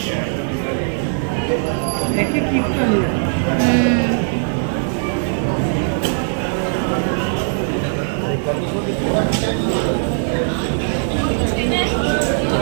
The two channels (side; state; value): left; silent; 55 dB below the other